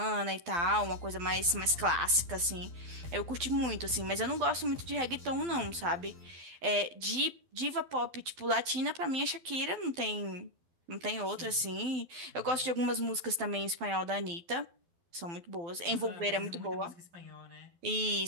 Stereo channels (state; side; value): late; left; 12 ms